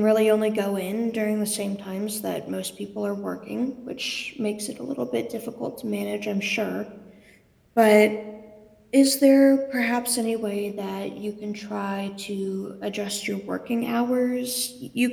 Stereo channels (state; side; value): identical; both; correlation 1.00